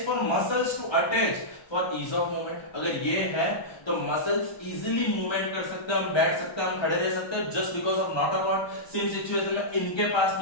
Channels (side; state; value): right; late; 1.2 ms